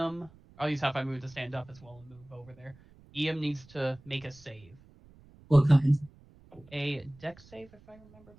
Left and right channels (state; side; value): noise; right; rumble, 25 dB below the sound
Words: I'll use half my move to stand up as well and move over there. Iam needs to make a save. What kind? A dex save, if I remember